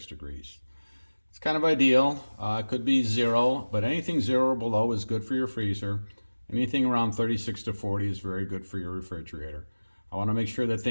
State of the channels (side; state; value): both; inverted; correlation -1.00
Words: degrees. It's kind of ideal. It could be 0, but anything 0 or below is good for your freezer. Anything around 36 to 40 is very good for your refrigerator. I want to make sure that